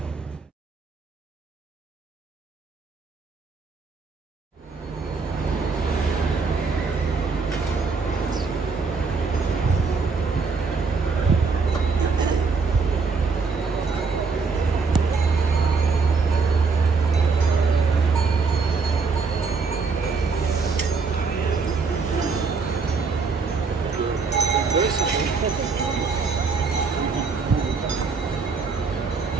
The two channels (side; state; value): left; quieter; 4.7 dB